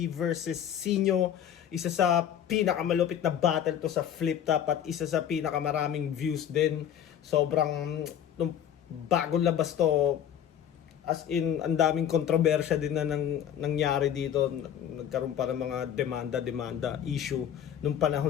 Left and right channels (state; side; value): quieter; right; 9.7 dB